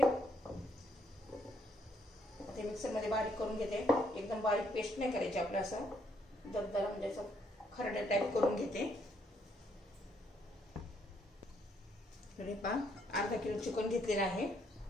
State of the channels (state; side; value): normal; both; correlation 0.71